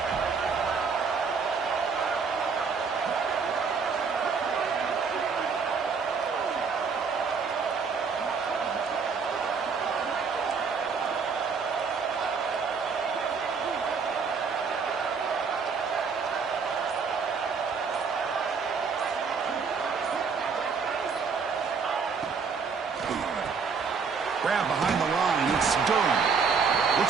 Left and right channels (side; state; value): left; quieter; 5.5 dB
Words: Grab behind the line. It's Durham.